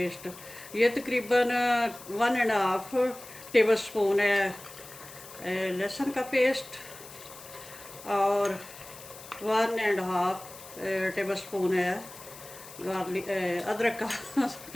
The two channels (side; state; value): left; noise; hiss, 17 dB below the sound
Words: ये तकरीबन 1.5 टेबलस्पून है लहसुन का पेस्ट और 1.5 टेबलस्पून है गार्लिक अदरक का